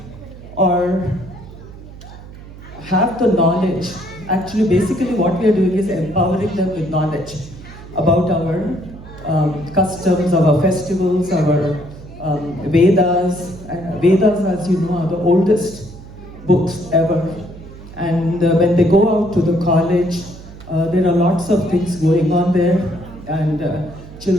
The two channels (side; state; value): right; noise; hum, 17 dB below the sound